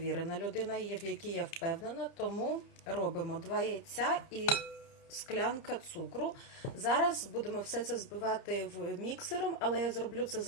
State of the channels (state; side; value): late; right; 30 ms